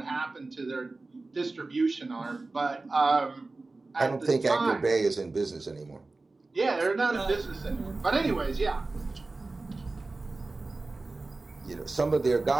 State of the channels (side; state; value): left; quieter; 3.4 dB